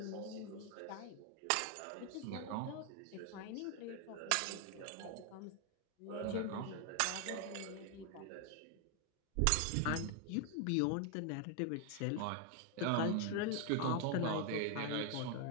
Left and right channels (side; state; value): both; different; correlation 0.00